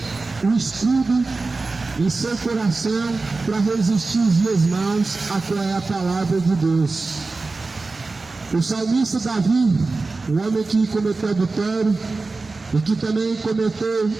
um escudo em seu coração para resistir os dias maus, a qual é a palavra de Deus. O salmista Davi, o homem que cometeu adultério e que também cometeu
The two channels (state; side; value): quieter; left; 3.7 dB